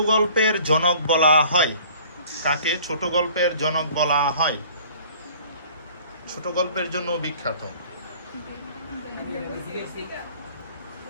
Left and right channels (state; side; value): inverted; both; correlation -0.51